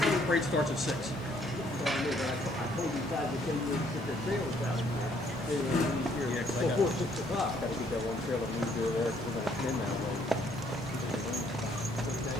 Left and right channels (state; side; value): normal; both; correlation 0.66